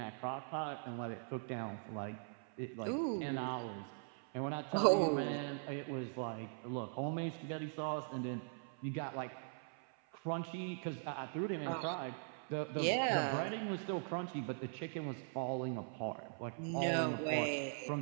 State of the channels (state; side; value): silent; left; 50 dB below the other